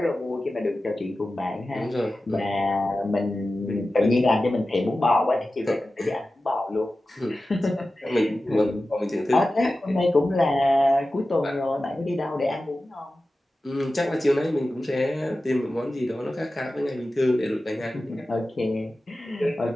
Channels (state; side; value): normal; both; correlation 0.94